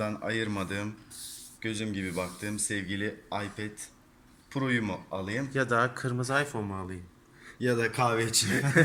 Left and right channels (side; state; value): both; identical; correlation 1.00